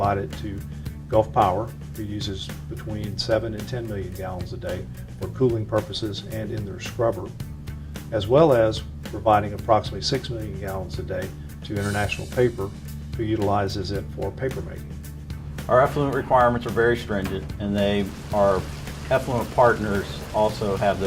to Gulf Power, who uses between 7 and 10 million gallons a day for cooling purposes and in their scrubber, as well as providing approximately 6 million gallons a day to International Paper, who utilizes it for paper making. Our effluent requirements are very stringent, and our effluent partners also have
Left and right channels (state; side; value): identical; both; correlation 1.00